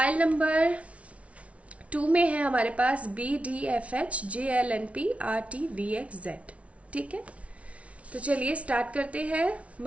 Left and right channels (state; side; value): late; left; 0.064 ms